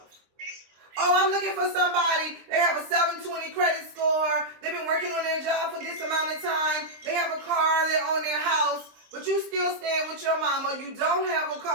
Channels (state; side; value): late; left; 23 ms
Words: Oh, I'm looking for somebody. They have a 720 credit score. They've been working on their job for this amount of time. They have a car. They own their house. But you still staying with your mama. You don't have a